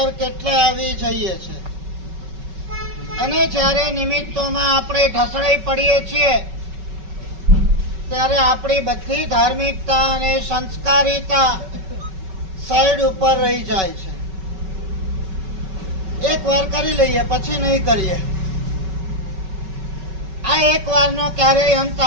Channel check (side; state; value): left; late; 5.3 ms